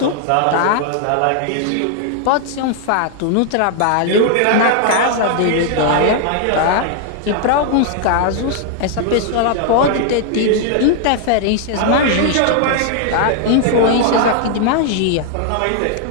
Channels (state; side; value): different; both; correlation 0.00